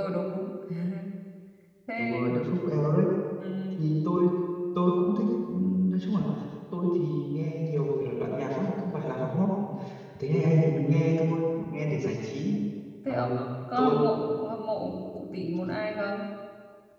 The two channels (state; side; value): identical; both; correlation 1.00